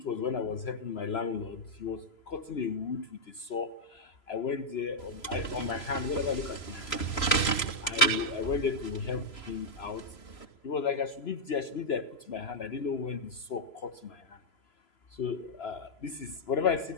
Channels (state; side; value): late; right; 3.0 ms